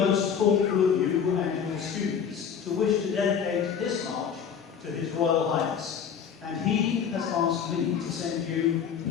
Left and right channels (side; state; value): right; quieter; 7.4 dB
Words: thoughtful of you and your students to wish to dedicate this march to His Royal Highness, and he has asked me to send you